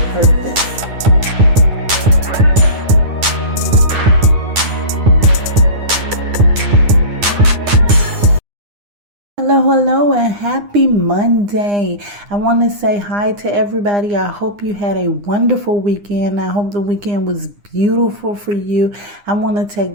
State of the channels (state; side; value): late; left; 9.8 ms